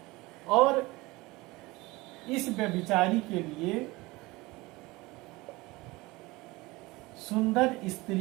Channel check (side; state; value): left; quieter; 21.8 dB